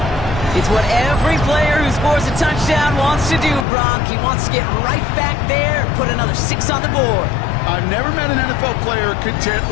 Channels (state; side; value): drops out; right; at 3.7 s